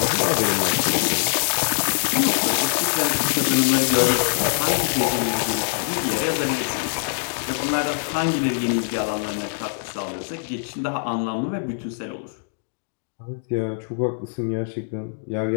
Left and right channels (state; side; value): silent; right; digital silence